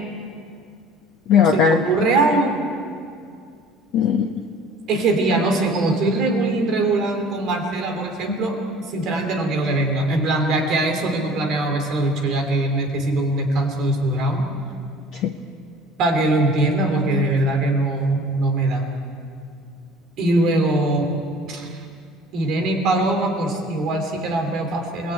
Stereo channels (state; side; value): normal; both; correlation 0.48